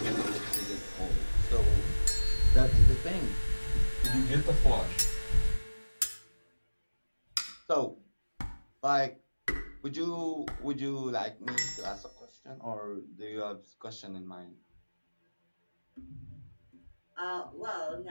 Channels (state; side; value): inverted; both; correlation -1.00